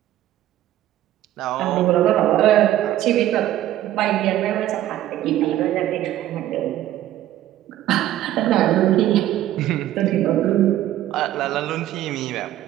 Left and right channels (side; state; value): left; quieter; 13.3 dB